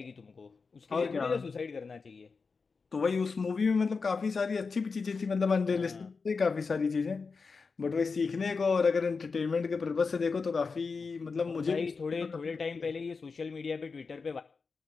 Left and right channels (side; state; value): right; quieter; 4.7 dB